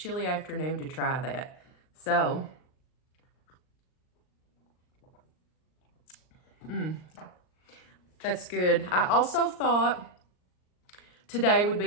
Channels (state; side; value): late; right; 39 ms